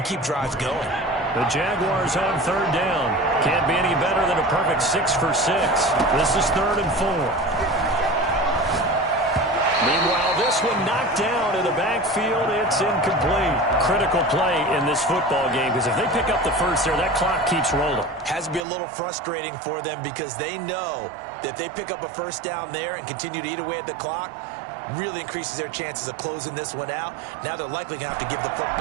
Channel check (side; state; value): left; drops out; at 18.6 s